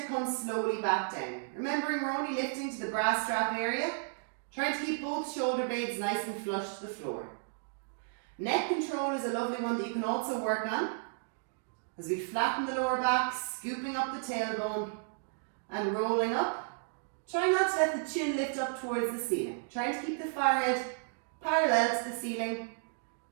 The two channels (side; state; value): left; silent; digital silence